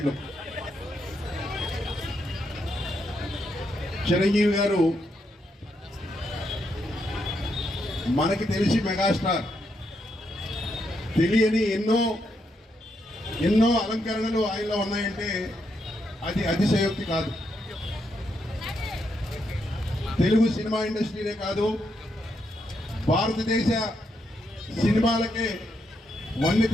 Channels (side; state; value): both; normal; correlation 0.80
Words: చిరంజీవి గారు మనకి తెలిసి మెగాస్టార్, తెలియని ఎన్నో అలంకరణలు ఆయనలో ఉన్నాయంటే అది అతిశయోక్తి కాదు. తెలుగు సినిమా ఇండస్ట్రీనే కాదు, భారతదేశ సినిమాలకే వన్నె